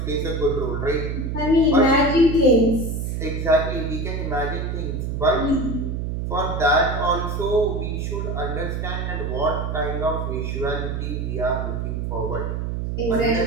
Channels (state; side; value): noise; right; hum, 2 dB below the sound